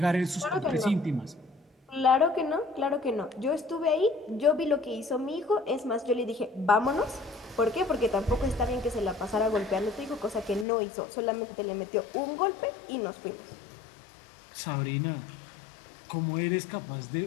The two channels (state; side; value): drops out; right; at 10.7 s